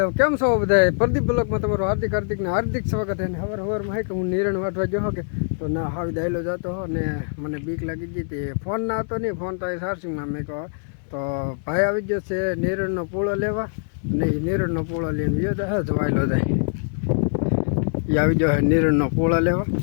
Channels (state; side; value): silent; right; 63 dB below the other